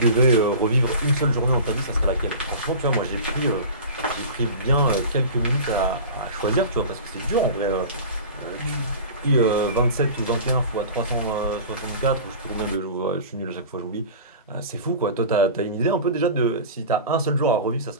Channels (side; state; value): both; inverted; correlation -0.35